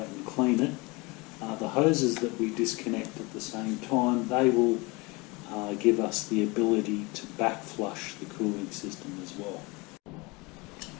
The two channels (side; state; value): right; quieter; 25.7 dB